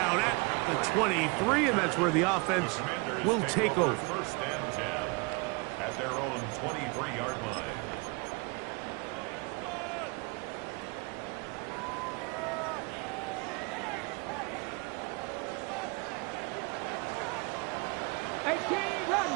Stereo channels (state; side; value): quieter; left; 29.2 dB